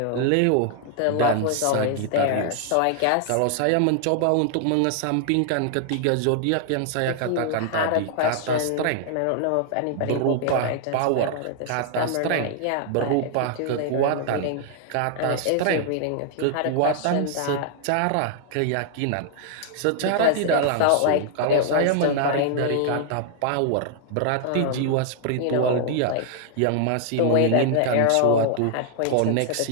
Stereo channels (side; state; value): both; different; correlation 0.00